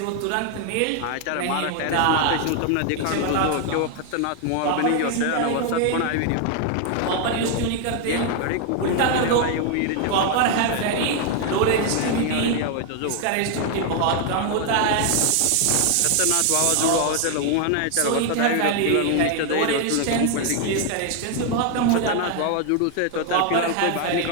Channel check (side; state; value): both; different; correlation 0.01